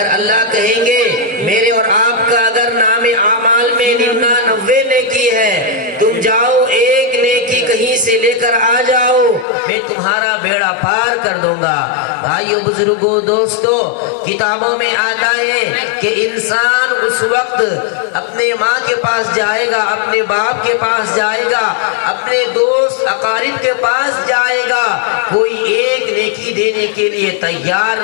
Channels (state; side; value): drops out; right; at 9.5 s